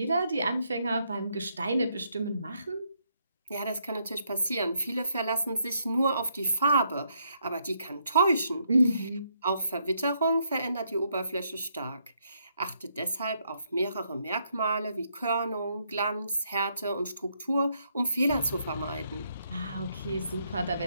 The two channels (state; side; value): inverted; both; correlation -0.75